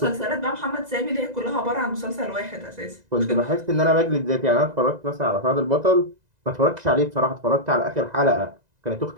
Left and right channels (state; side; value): late; left; 2.0 ms